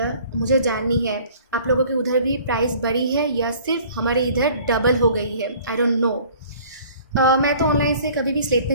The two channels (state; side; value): inverted; both; correlation -0.51